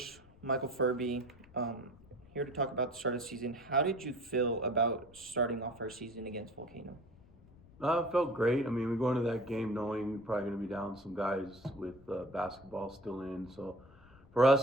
Michael Furby, here to talk about the start of the season. How did you feel about starting off our season against Volcano? It felt great. I mean, we go into that game knowing we're probably going to be down some guys with basketball still in. So for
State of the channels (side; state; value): left; noise; rumble, 24 dB below the sound